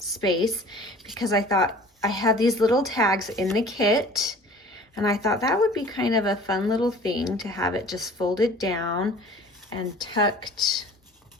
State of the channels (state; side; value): normal; both; correlation 0.47